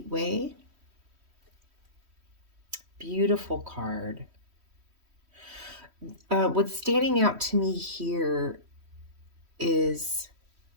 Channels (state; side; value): late; left; 3.1 ms